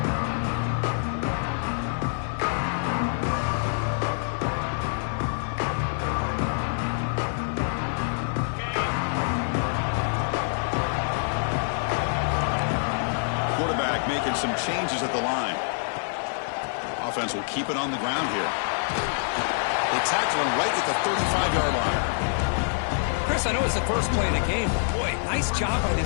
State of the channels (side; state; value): right; silent; digital silence